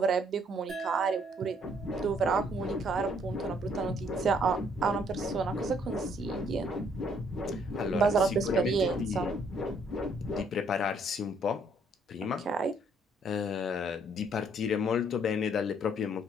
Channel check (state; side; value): normal; both; correlation 0.66